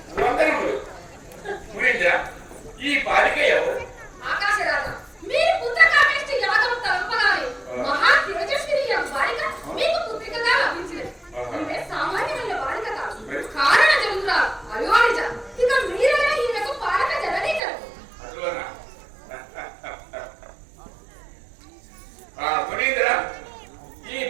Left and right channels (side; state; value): left; drops out; at 17.6 s